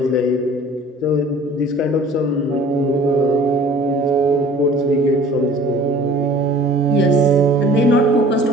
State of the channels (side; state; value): both; normal; correlation 0.49